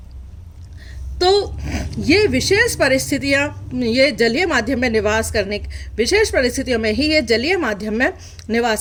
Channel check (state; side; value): identical; both; correlation 1.00